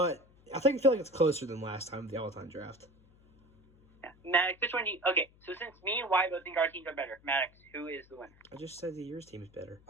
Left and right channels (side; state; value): left; noise; hum, 28 dB below the sound